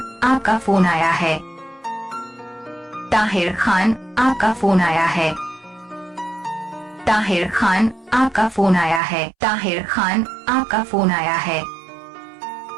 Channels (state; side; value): drops out; left; at 9.0 s